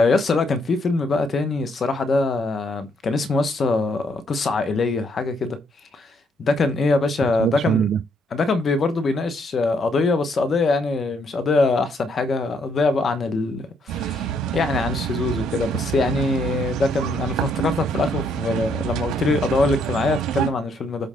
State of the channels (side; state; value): both; normal; correlation 0.71